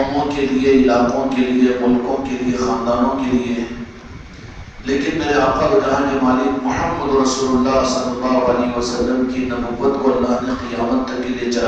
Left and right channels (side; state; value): both; identical; correlation 1.00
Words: کے لیے، علاقوں کے لیے، ملکوں کے لیے، خاندانوں کے لیے، لیکن میرے آقا و جہاں کے مالک محمد رسول اللہ صلی اللہ علیہ وسلم کی نبوت کو اللہ نے قیامت تک کے لیے